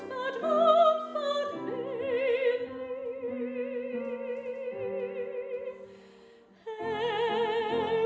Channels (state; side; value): identical; both; correlation 1.00